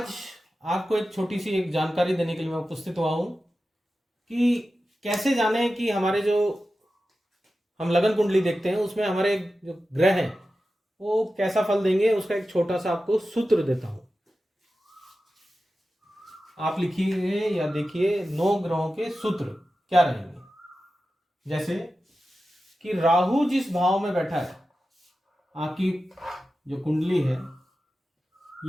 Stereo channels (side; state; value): both; normal; correlation 0.93